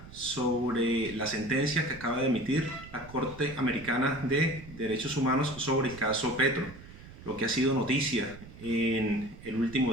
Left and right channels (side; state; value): right; noise; rumble, 17 dB below the sound